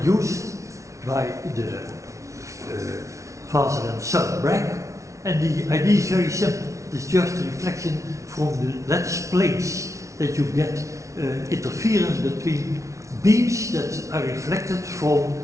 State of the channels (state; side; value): late; left; 0.15 ms